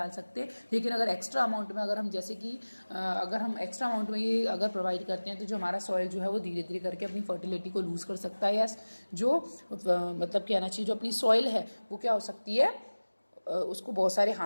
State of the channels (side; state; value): both; inverted; correlation -1.00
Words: सकते। लेकिन अगर एक्स्ट्रा अमाउंट में, अगर हम जैसे कि अगर हम एक्स्ट्रा अमाउंट में ये अगर प्रोवाइड करते हैं तो जो हमारा सॉइल जो है वो धीरे धीरे करके अपनी फर्टिलिटी को लूज़ कर सकता है, या जो मतलब कहना चाहिए जो अपनी सॉइल है वो क्या हो सकती है, उसको बहुत सारे